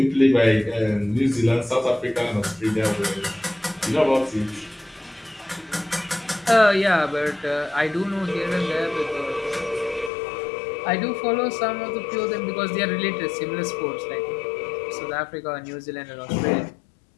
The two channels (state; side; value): drops out; right; at 10.1 s